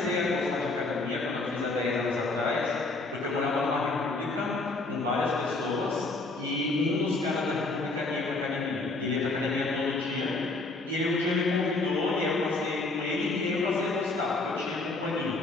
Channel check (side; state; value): right; quieter; 3.3 dB